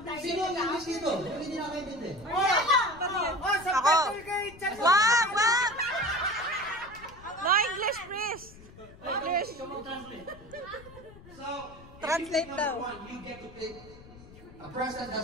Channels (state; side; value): noise; left; rumble, 20 dB below the sound